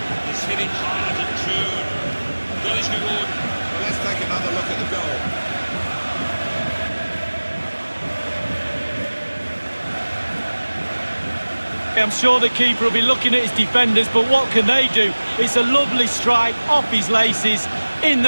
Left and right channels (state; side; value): inverted; both; correlation -1.00